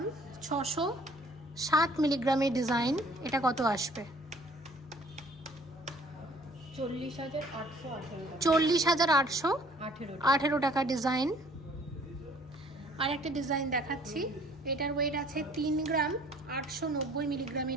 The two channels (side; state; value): both; normal; correlation 0.56